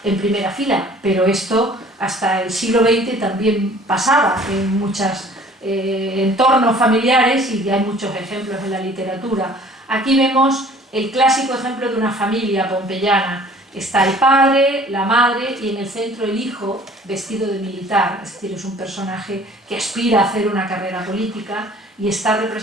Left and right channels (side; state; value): both; normal; correlation 0.51